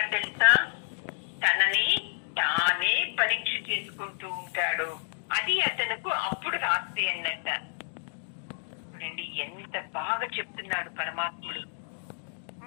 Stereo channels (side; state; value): right; silent; digital silence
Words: తెలుసా? తనని తానే పరీక్ష చేసుకుంటూ ఉంటాడు. అది అతనుకు అప్పుడు రాత్రి అన్నట్ట. చూడండి ఎంత బాగా చెప్తున్నాడు పరమాత్ముడు.